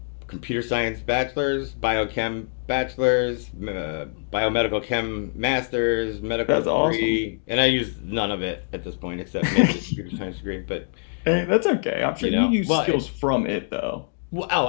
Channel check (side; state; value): right; silent; 62 dB below the other